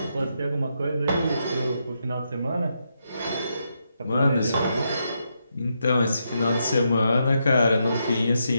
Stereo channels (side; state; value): both; inverted; correlation -0.82